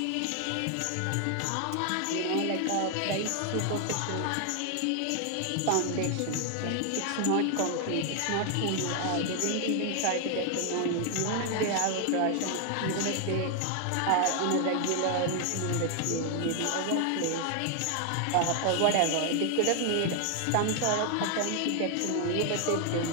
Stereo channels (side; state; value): both; different; correlation 0.00